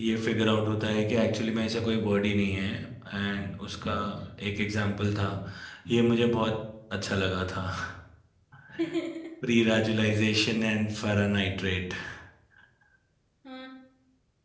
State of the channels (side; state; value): both; identical; correlation 1.00